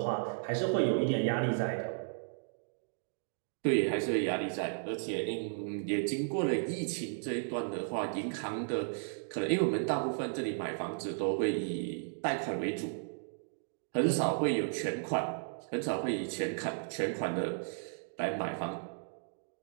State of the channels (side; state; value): left; silent; digital silence